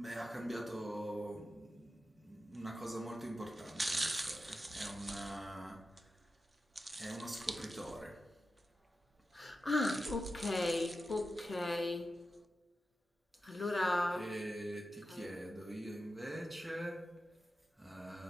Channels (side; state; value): both; normal; correlation 0.91